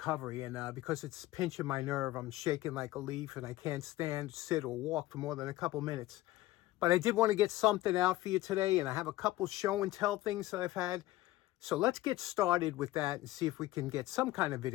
And because it's pinching my nerve, I'm shaking like a leaf and I can't stand, sit, or walk for more than a couple minutes. But I did want to get something out for you today, and I have a couple show and tell things that I've had. So let's get started with that and see if we can get some kind of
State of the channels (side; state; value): right; quieter; 17.0 dB